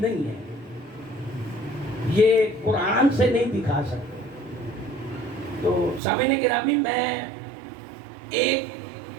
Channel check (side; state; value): left; drops out; at 6.0 s